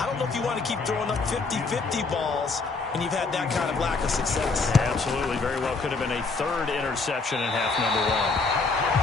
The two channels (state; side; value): quieter; right; 4.1 dB